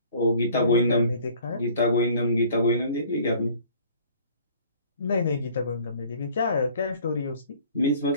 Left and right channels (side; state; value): both; inverted; correlation -0.52